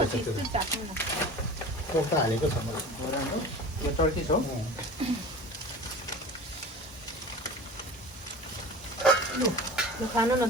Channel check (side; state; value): both; normal; correlation 0.37